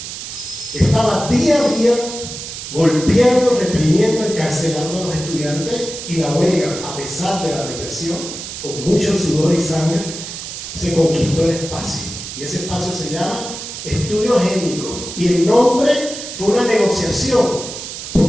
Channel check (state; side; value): noise; right; hiss, 9 dB below the sound